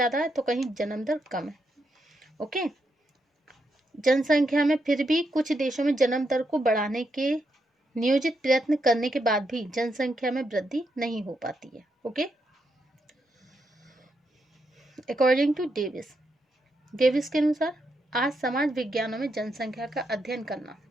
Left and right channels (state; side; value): normal; both; correlation 0.81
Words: है तो कहीं जन्म दर कम है. ओके, जनसंख्या में फिर भी कुछ देशों में जन्म दर को बढ़ाने के नियोजित प्रयत्न करने के बाद भी जनसंख्या में वृद्धि नहीं हो पाती है. ओके, अकॉर्डिंग टू डेविस के अनुसार आज समाज विज्ञानों में जनसंख्या का अध्ययन करना